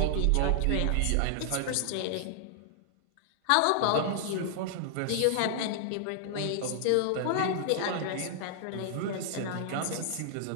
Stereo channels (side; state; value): both; different; correlation 0.00